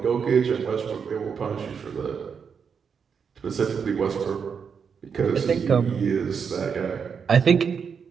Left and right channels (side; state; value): left; quieter; 6.5 dB